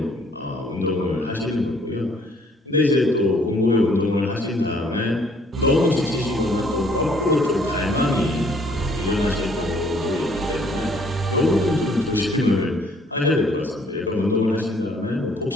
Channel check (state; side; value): normal; both; correlation 0.62